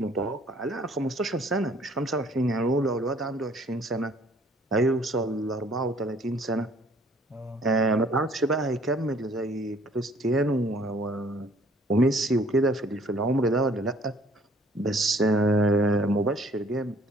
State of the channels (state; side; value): normal; both; correlation 0.58